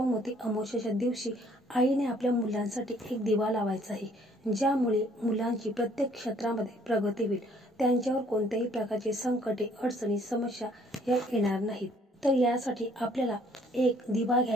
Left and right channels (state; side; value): normal; both; correlation 0.61